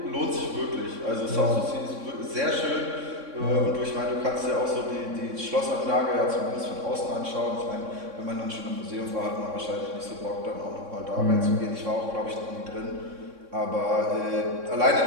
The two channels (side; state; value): left; late; 3.6 ms